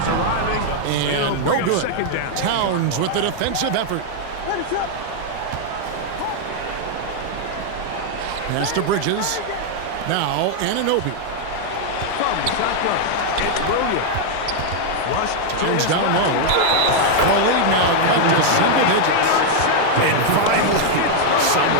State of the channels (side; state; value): both; different; correlation 0.00